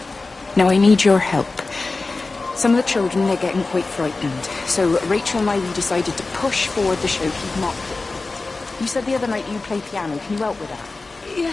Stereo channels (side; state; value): right; quieter; 3.6 dB